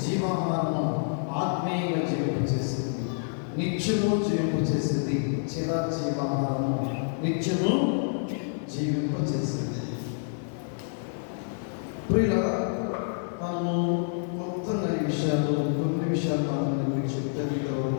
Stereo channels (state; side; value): silent; right; digital silence